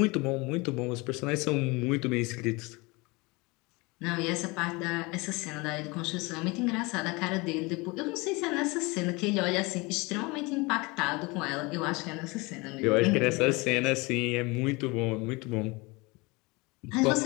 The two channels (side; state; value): right; quieter; 25.5 dB